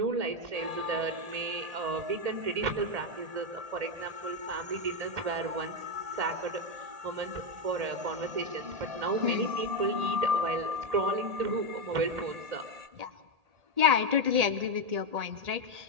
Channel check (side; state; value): left; late; 1.8 ms